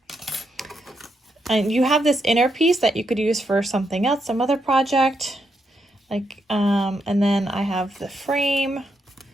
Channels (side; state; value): both; normal; correlation 0.80